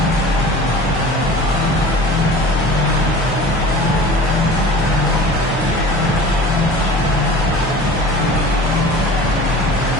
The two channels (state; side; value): normal; both; correlation 0.40